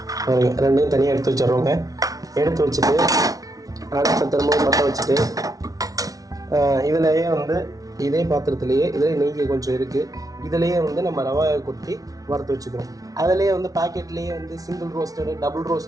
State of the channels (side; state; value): left; late; 0.18 ms